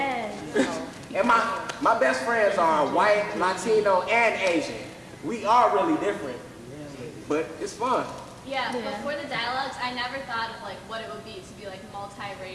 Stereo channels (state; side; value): identical; both; correlation 1.00